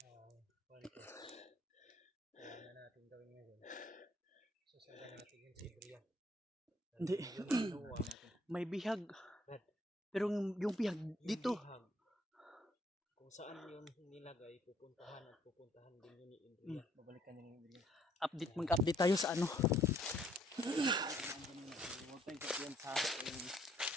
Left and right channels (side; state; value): both; normal; correlation 0.64